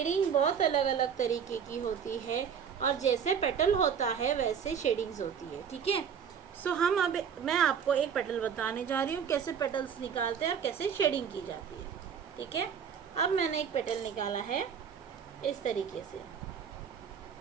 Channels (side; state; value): left; quieter; 7.4 dB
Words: बहुत अलग अलग तरीके की होती है और जैसे पेटल होता है वैसे शेडिंग्स होती है। ठीक है, सो मैं आपको एक पेटल बताने जा रही हूँ, कैसे पेटल्स निकालते हैं और कैसे शेडिंग की जाती है। ठीक है, अब मैंने एक पेटल निकाला है इस तरीके से।